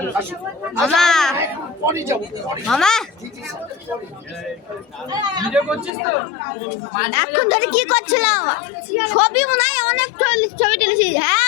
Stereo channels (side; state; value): right; drops out; at 5.9 s